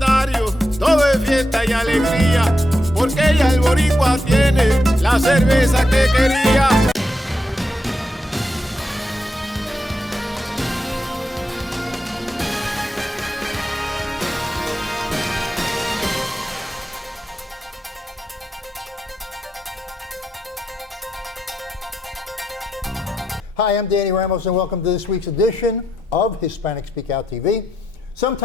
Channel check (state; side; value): normal; both; correlation 0.83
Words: todo es fiesta y alegría, porque ya el boricua tiene la cerveza que quería. Hi, I'm Danny Ramos, and welcome to this week's edition of Hispanic Speak Out TV.